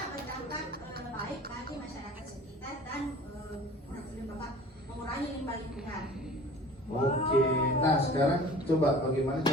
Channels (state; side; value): normal; both; correlation 0.44